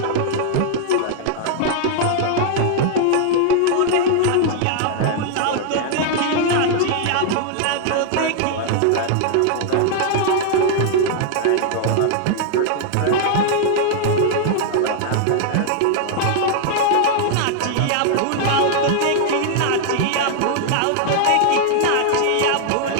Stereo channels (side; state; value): both; different; correlation 0.00